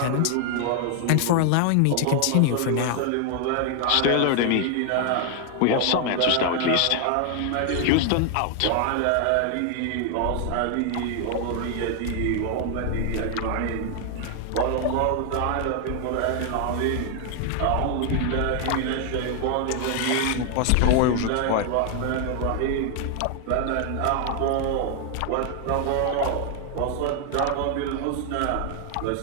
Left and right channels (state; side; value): different; both; correlation 0.00